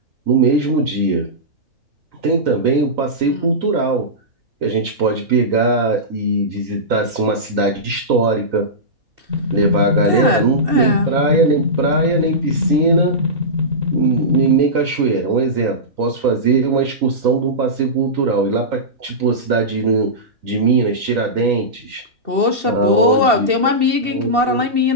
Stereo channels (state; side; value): late; left; 2.7 ms